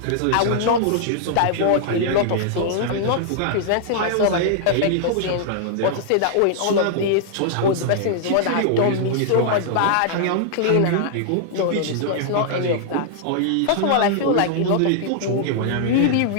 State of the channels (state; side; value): different; both; correlation -0.01